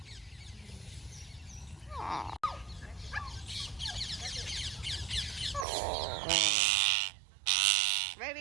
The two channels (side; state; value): left; drops out; at 5.7 s